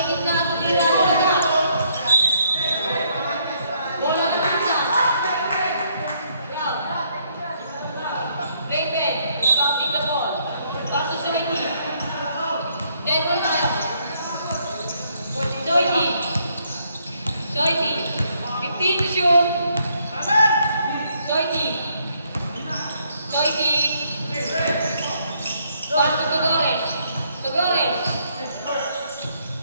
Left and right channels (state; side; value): inverted; both; correlation -0.70